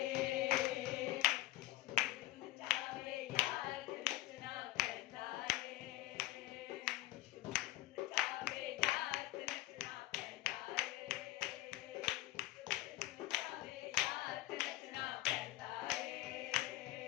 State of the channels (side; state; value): right; quieter; 16.9 dB